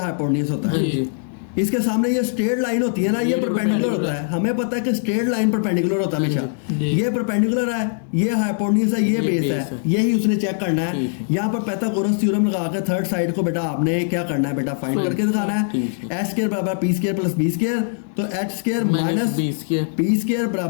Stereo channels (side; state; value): right; silent; digital silence